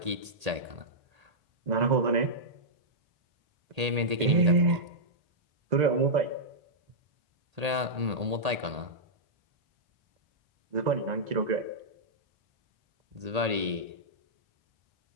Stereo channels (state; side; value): late; left; 1.8 ms